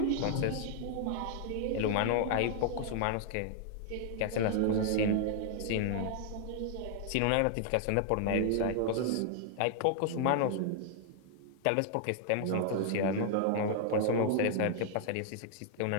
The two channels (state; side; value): different; both; correlation 0.00